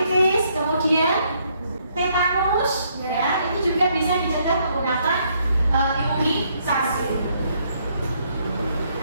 Kemudian tetanus. Ya. Ini juga bisa dicegah menggunakan imunisasi.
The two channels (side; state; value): both; inverted; correlation -0.71